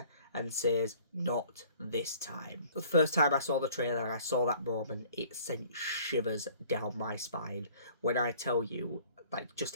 and says, not this time. The first time I saw the trailer and I saw that moment, it sent shivers down my spine. When I tell you, like, just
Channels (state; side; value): inverted; both; correlation -0.53